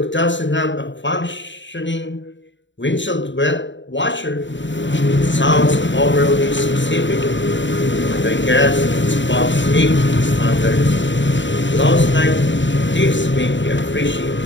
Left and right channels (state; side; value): late; right; 0.54 ms